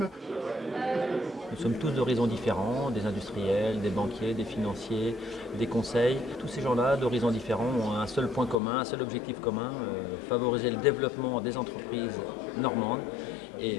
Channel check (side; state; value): right; drops out; at 8.6 s